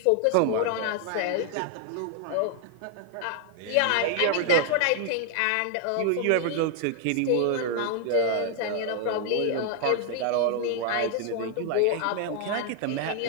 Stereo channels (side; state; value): both; different; correlation 0.00